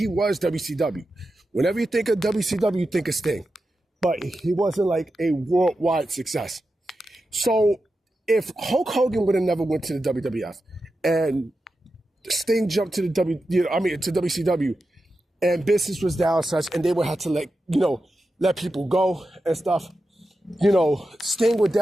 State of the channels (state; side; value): normal; both; correlation 0.90